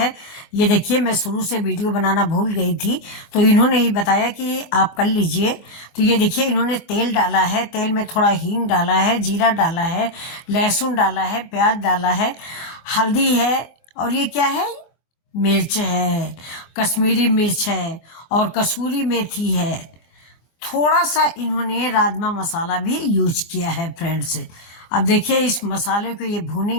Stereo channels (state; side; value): late; right; 25 ms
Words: ये देखिए, मैं शुरू से वीडियो बनाना भूल गई थी, तो इन्होंने ही बताया कि आप कर लीजिए। तो ये देखिए, इन्होंने तेल डाला है, तेल में थोड़ा हींग डाला है, जीरा डाला है, लहसुन डाला है, प्याज डाला है, हल्दी है, और ये क्या है, मिर्च है, कश्मीरी मिर्च है और कसूरी मेथी है। थोड़ा सा इन्होंने राजमा मसाला भी यूज किया है फ्रेंड्स। अब देखिए, इस मसाले को ये